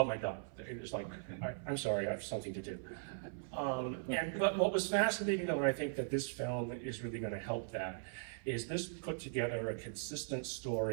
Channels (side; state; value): left; silent; 52 dB below the other